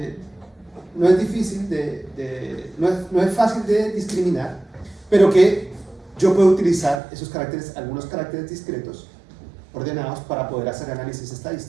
no es difícil no es fácil de discriminar, pero que yo puedo utilizar esos caracteres, algunos caracteres discretos ordenados para poder hacer análisis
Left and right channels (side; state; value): left; drops out; at 7.0 s